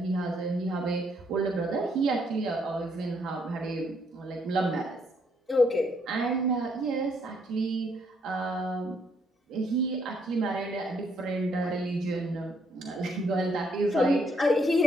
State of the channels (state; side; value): normal; both; correlation 0.71